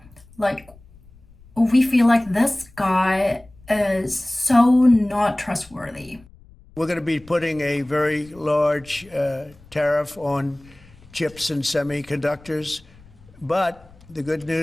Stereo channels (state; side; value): noise; left; rumble, 25 dB below the sound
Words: we feel like this guy is so not trustworthy. We're going to be putting a very large tariff on chips and semiconductors, but the good